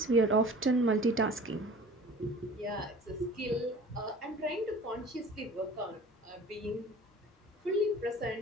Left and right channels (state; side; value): normal; both; correlation 0.44